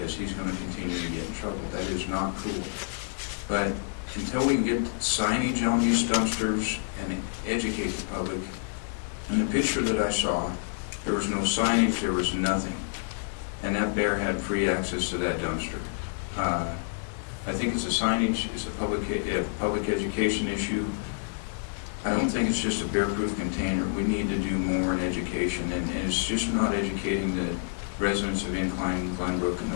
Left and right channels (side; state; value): right; silent; digital silence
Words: he's going to continue to get in trouble. That is not cool." But until we can get signage on these dumpsters and educate the public, in the picture that I saw, there was no signage, there was nothing. And that bear had free access to that dumpster. I think it's a signage, it's a public education issue. I don't think it's just a bear-proof container. We need to do more in education, and it's just not educating the residents of Incline, Glenbrook, and